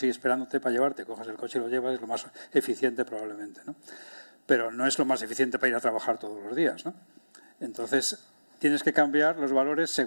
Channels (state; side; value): inverted; both; correlation -1.00